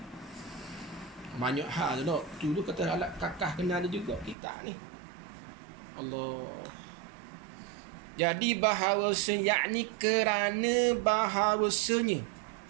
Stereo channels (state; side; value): drops out; left; at 4.4 s